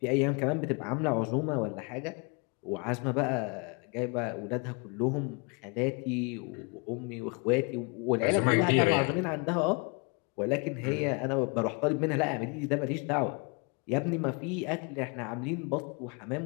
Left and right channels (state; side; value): quieter; right; 32.0 dB